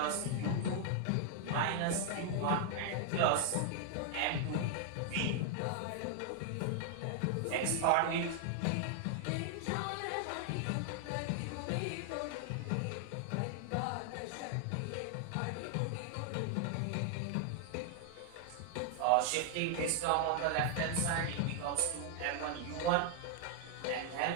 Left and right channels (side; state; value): both; different; correlation 0.00